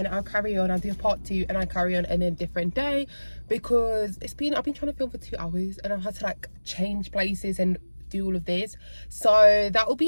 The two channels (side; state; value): both; inverted; correlation -1.00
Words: I'll carry on. I'll do part 2 and I'll carry on in a different day, because I've been trying to film for 2 hours and I've had to like change places and do all of this. So that will